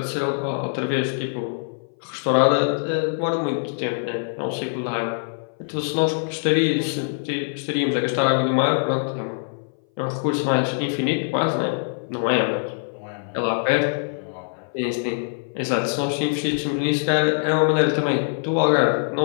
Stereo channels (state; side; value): silent; right; 59 dB below the other